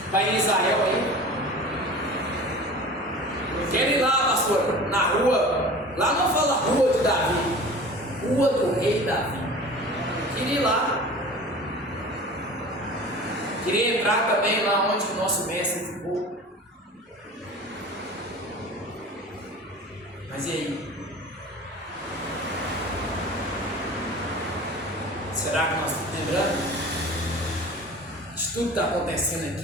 Vai em Israel aí. Eu quero ir lá, pastor, na rua. Lá não fala rua de Davi, rua do rei Davi. Eu queria ir lá. Queria entrar também lá onde o nosso mestre ficou. Mas e aí? Será que nós estamos lembrando? De tudo que está acontecendo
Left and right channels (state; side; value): normal; both; correlation 0.39